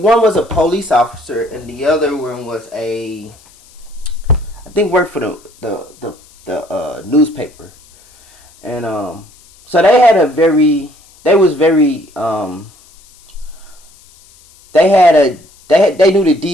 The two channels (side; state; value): left; noise; hiss, 27 dB below the sound